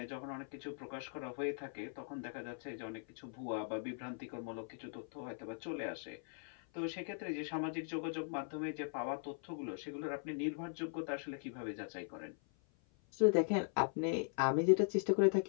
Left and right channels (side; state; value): right; silent; 51 dB below the other